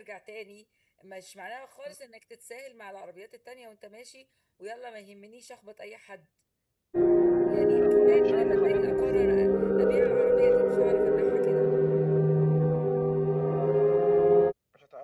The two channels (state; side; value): identical; both; correlation 1.00